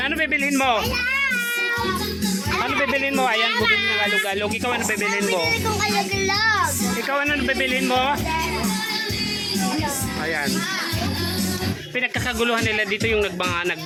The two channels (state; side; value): identical; both; correlation 1.00